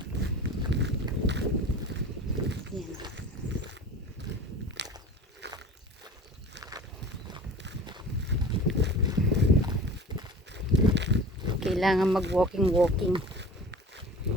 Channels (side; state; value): both; normal; correlation 0.40